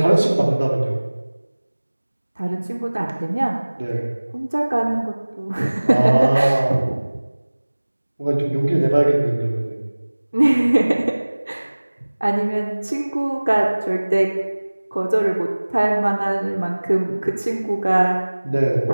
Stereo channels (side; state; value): both; inverted; correlation -1.00